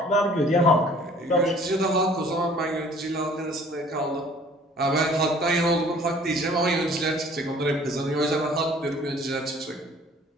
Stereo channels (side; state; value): both; normal; correlation 0.53